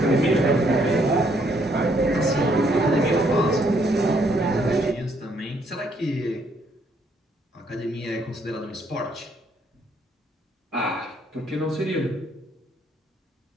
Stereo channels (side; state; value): both; normal; correlation 0.69